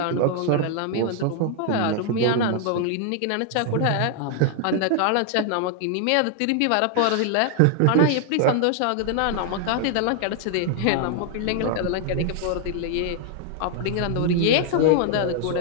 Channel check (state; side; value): different; both; correlation 0.00